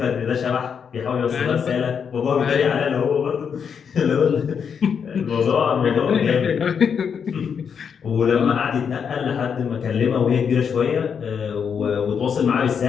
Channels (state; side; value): quieter; right; 6.9 dB